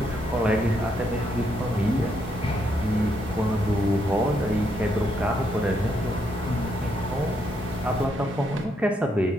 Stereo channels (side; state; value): both; normal; correlation 0.76